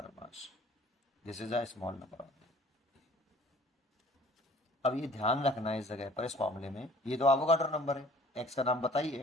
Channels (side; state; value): both; normal; correlation 0.52